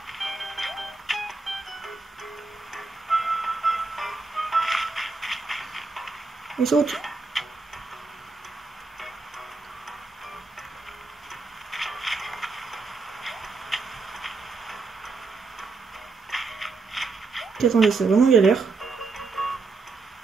On saute. Attendez, c'est vraiment galère.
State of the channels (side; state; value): left; quieter; 4.0 dB